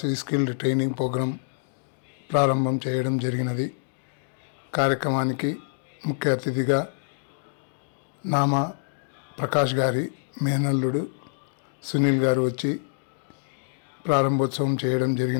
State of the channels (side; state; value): right; silent; digital silence